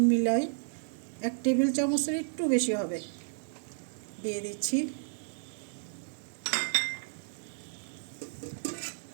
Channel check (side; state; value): left; silent; digital silence